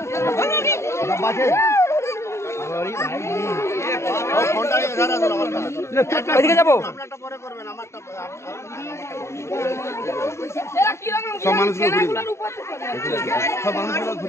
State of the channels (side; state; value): right; late; 0.13 ms